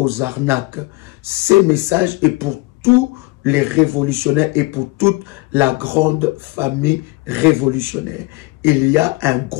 arnaques. Ces messages est pour tous les révolutionnaires et pour toute la grande famille révolutionnaire. Il y a un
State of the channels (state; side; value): quieter; right; 22.2 dB